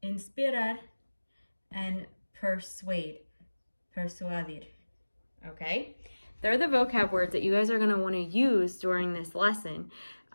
inspirar, and persuade, persuadir. Okay? They're the vocab words that you guys are going to want to use during this lesson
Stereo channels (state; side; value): inverted; both; correlation -1.00